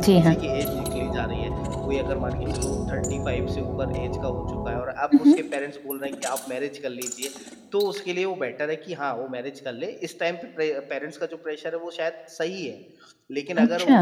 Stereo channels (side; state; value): both; identical; correlation 1.00